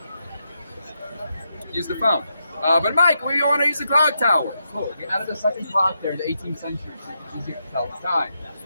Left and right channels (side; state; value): both; inverted; correlation -0.83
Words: Use the phone. But Mike, we want to use the clock tower. Cool. We added a second clock there in the 18th century, so it's easier to tell the time.